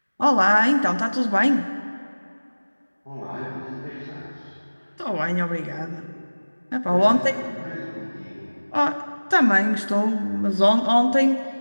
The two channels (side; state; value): both; inverted; correlation -1.00